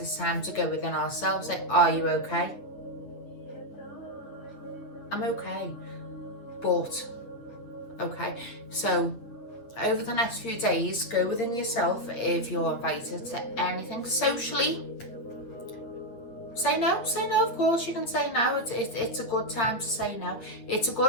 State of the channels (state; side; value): late; right; 8.9 ms